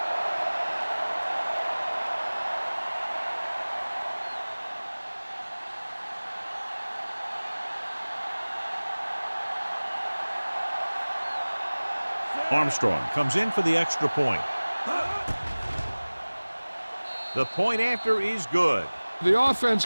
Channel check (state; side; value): inverted; both; correlation -1.00